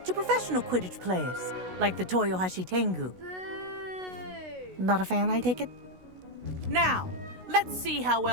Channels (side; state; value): left; late; 16 ms